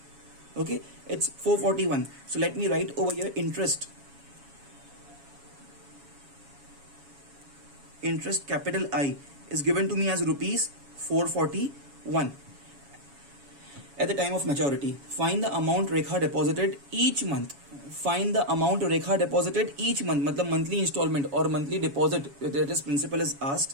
Okay, it's 441. So let me write over here interest. Interest capital I is given to me as rupees 441 at the time of maturity. Find the amount Rekha deposited each month. Find the amount Rekha deposited each month. मतलब monthly installment or monthly deposit, that is principal is asked.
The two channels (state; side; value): late; left; 7.2 ms